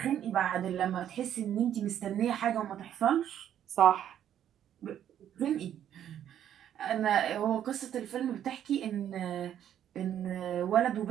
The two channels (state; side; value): quieter; left; 10.3 dB